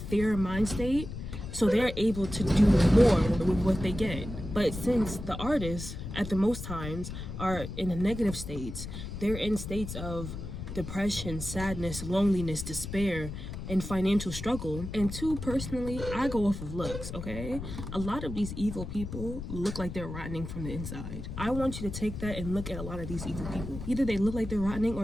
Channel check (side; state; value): left; noise; rumble, 8 dB below the sound